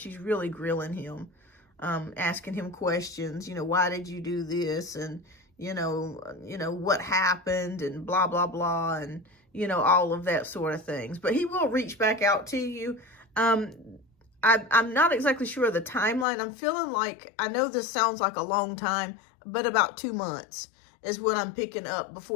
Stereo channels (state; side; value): drops out; right; at 16.2 s